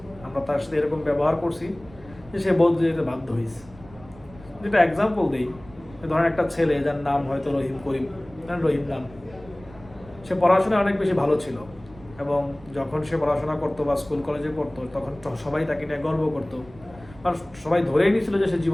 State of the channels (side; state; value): right; noise; rumble, 21 dB below the sound